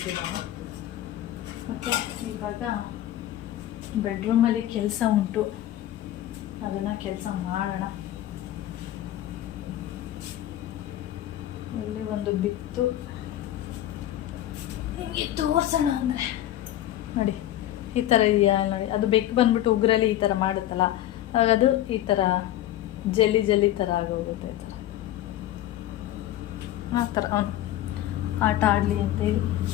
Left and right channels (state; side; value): quieter; right; 13.3 dB